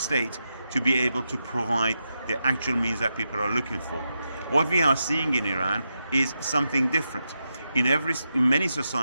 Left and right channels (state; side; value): inverted; both; correlation -0.87